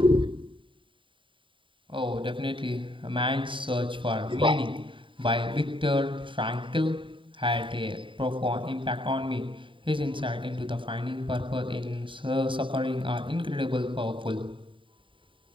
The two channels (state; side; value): late; left; 0.25 ms